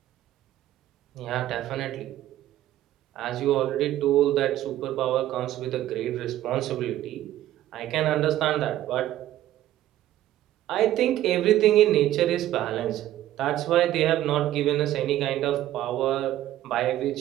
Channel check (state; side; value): quieter; left; 13.6 dB